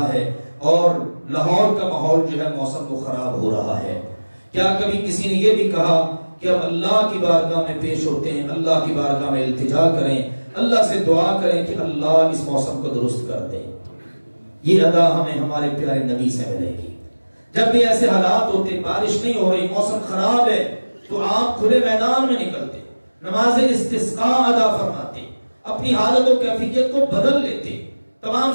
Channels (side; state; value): both; inverted; correlation -1.00